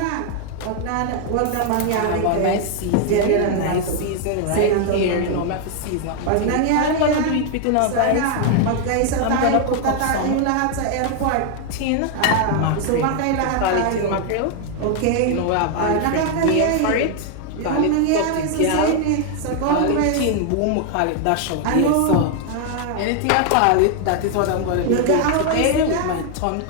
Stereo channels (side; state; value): both; different; correlation 0.00